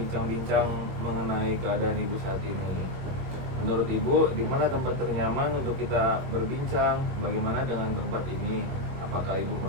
mengenai keadaan Ibu saat ini? Menurut Ibu, di mana tempat ternyaman untuk kita berbincang? Bagaimana dengan tempat ini? Apakah Ibu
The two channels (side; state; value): left; late; 21 ms